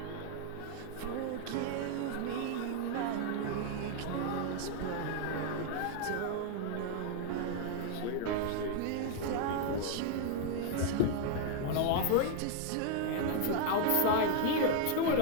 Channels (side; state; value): both; different; correlation 0.00